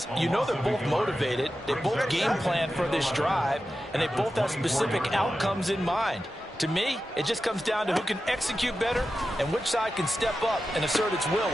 you know they're both motivated. They both game plan for this drive, and they both have specific outcomes in mind. To me, it just comes down to who can execute better and which side can step up and assert its will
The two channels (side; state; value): both; normal; correlation 0.92